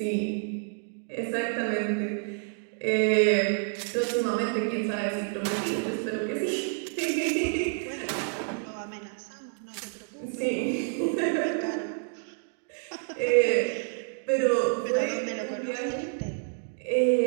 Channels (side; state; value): left; silent; 59 dB below the other